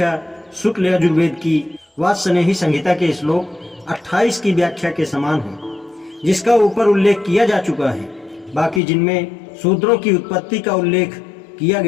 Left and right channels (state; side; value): drops out; right; at 8.8 s